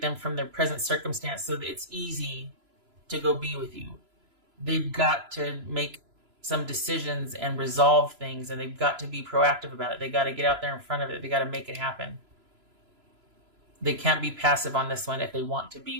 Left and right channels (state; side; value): late; left; 3.0 ms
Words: them from their present circumstance so that it's easy to go be with you. They've got to make some decisions and resolve things, and they've got to be proactive about it. They got to get out there in front of it. They got to make it happen. They can't be passive on this one if they want to be